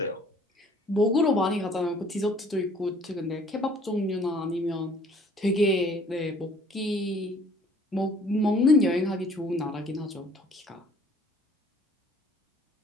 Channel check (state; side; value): normal; both; correlation 0.56